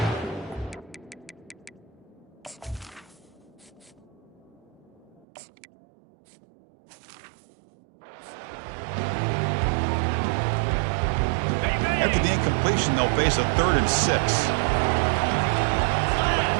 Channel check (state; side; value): drops out; left; at 5.2 s